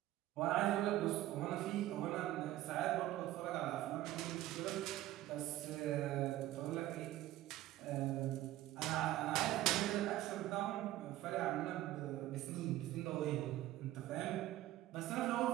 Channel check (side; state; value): left; quieter; 14.9 dB